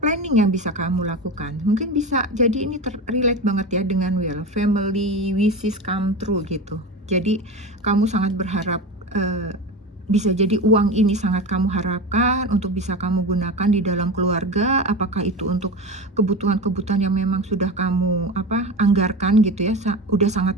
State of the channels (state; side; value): normal; both; correlation 0.25